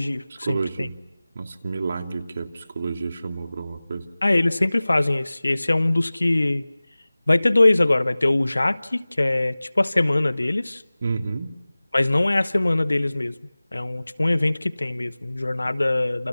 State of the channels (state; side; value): inverted; both; correlation -0.98